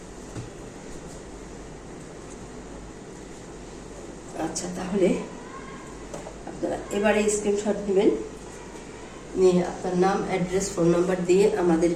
আচ্ছা, তাহলে আপনারা এবারে স্ক্রিনশট নেবেন, নিয়ে আপনার নাম, অ্যাড্রেস, ফোন নাম্বার দিয়ে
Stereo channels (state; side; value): identical; both; correlation 1.00